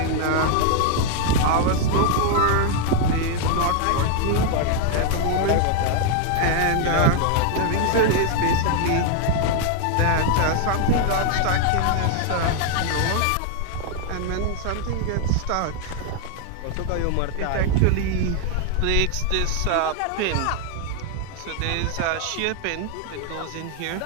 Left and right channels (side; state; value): both; different; correlation 0.00